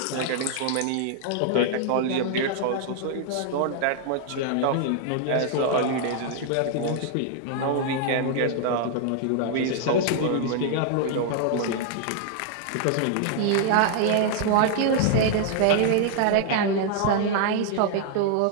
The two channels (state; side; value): different; both; correlation 0.00